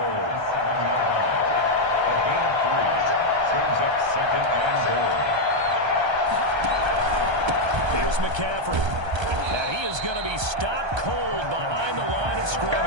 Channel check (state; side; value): late; left; 1.3 ms